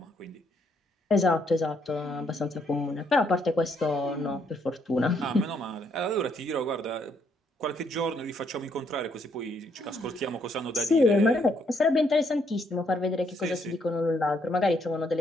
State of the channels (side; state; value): both; normal; correlation 0.72